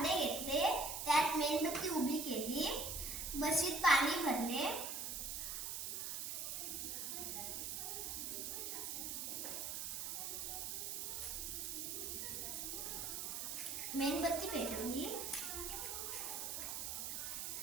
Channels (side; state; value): right; noise; hiss, 3 dB below the sound